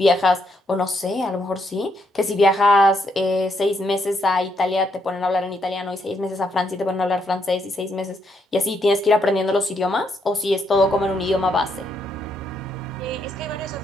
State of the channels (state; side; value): normal; both; correlation 0.76